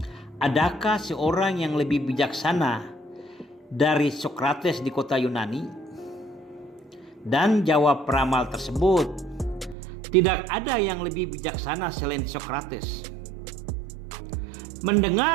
adakah seorang yang lebih bijaksana dari Socrates di kota Yunani? Dan jawab peramal tersebut, tidak ada yang lebih bijaksana selain Socrates.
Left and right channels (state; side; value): drops out; left; at 9.8 s